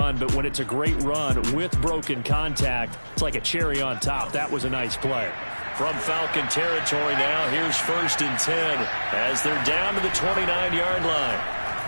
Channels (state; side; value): inverted; both; correlation -1.00